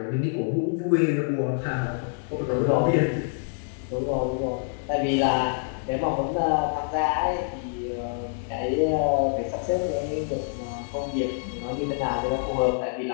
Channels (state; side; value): silent; right; 61 dB below the other